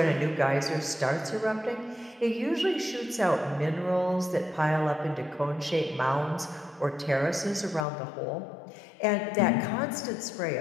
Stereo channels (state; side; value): drops out; right; at 7.9 s